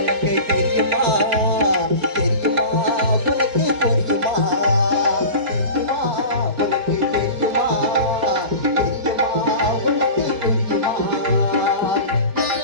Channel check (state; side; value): late; left; 4.3 ms